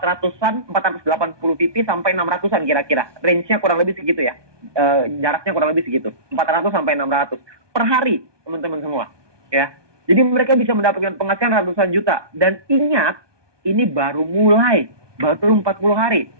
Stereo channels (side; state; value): left; late; 1.2 ms